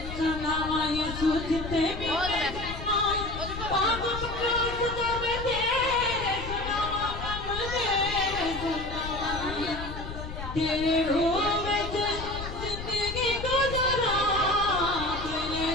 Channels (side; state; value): left; noise; rumble, 8 dB below the sound